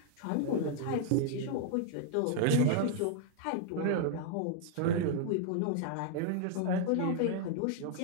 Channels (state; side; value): different; both; correlation 0.00